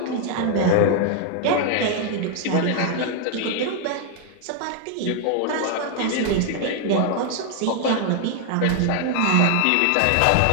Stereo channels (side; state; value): both; different; correlation 0.00